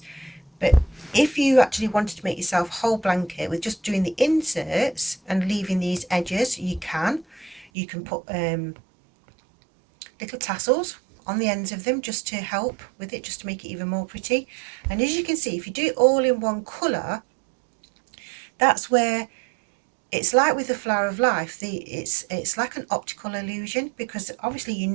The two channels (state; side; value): drops out; left; at 7.7 s